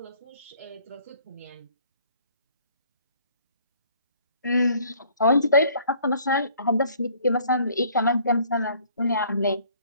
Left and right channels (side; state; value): both; inverted; correlation -0.58